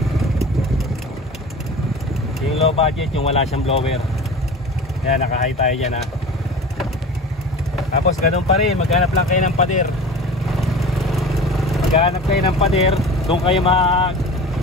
Yung low budget, yung wala siyang blower. Yan, naka-high tayo dyan ha. Tapos ganun pa rin, maghanap lang kayo ng pader. Maghanap kayo ng pader, doon kayo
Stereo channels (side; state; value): both; normal; correlation 0.36